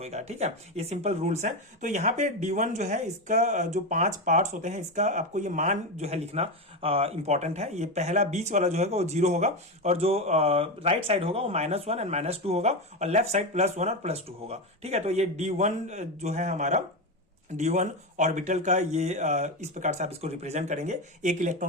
ठीक है। ये सिंपल रूल्स हैं। तो यहाँ पे D1 जो है इसका जो 5 पार्ट्स होते हैं इसका आपको ये मान जो है लिखना इंपॉर्टेंट है। ये पहला बीच वाला जो है वो 0 होगा, और जो राइट साइड होगा वो -1 एंड -2 होगा, और लेफ्ट साइड +1 और +2 होगा, ठीक है। तो ये D1 जो है हमारा D1 ऑर्बिटल का ये इस प्रकार से आप इसको रिप्रेजेंट करेंगे। एक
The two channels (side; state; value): both; normal; correlation 0.15